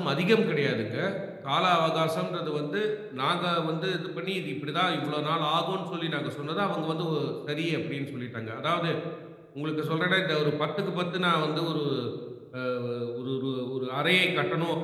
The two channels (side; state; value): both; identical; correlation 1.00